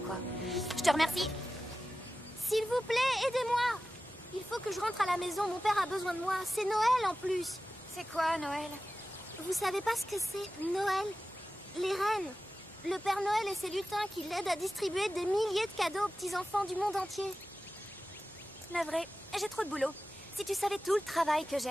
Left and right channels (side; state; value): both; normal; correlation 0.94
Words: quoi. Je te remercie. S'il vous plaît, aidez-moi. Il faut que je rentre à la maison. Mon père a besoin de moi. C'est Noël en plus. C'est quoi, Noël? Vous savez pas ce que c'est, Noël? Les reines. Le Père Noël et ses lutins qui l'aident à distribuer des milliers de cadeaux aux petits-enfants du monde entier. Navré, j'ai trop de boulot. Si tu savais tout le travail que